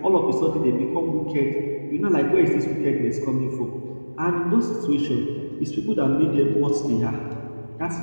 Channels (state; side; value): inverted; both; correlation -1.00